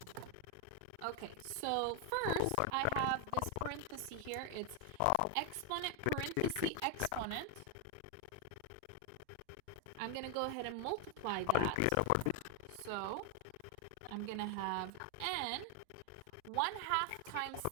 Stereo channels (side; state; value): both; different; correlation 0.01